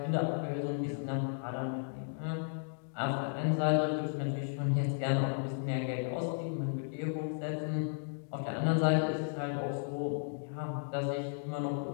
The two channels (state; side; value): silent; right; digital silence